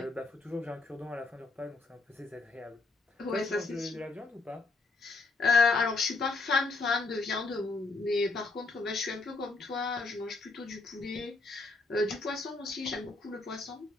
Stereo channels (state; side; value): quieter; right; 3.7 dB